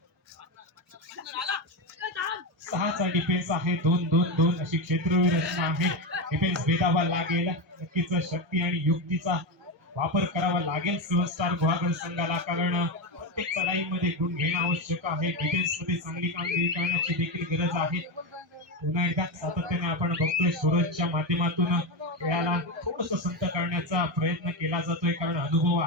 6चा डिफेन्स आहे. 2-2-2 अशी क्षेत्रवीर रचना आहे. डिफेन्स भेदावा लागेल. नक्कीच शक्ती आणि युक्तीचा वापर करावा लागेल सेव्हन स्टार गुहागर संघाला. कारण प्रत्येक चढाईमध्ये गुण घेणं आवश्यक आहे. डिफेन्स मध्ये चांगली कामगिरी करण्याची देखील गरज आहे. पुन्हा एकदा सातत्याने आपण बघतोय सूरजच्या माध्यमातून खेळाला थोडस संत करण्याचा प्रयत्न केला जातोय. कारण अनुभव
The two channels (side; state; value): both; normal; correlation 0.13